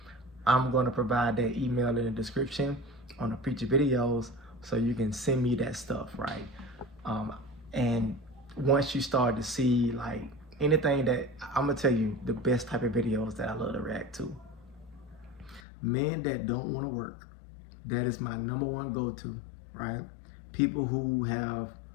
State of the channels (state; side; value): drops out; right; at 15.6 s